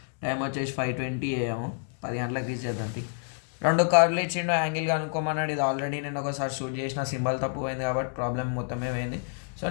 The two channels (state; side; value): silent; right; 59 dB below the other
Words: టైం వచ్చేసి 5:20 AM. 10 గంటలకు రీచ్ చేద్దాం. రెండు కార్లు ఇచ్చిండు, యాంగిల్ కనుక్కోమన్నాడు. ఇది ఆల్రెడీ నేను ఒకసారి షూట్ చేసిన, సింబల్ తప్పు పోయింది కాబట్టి ప్రాబ్లం మొత్తమే పోయింది. సో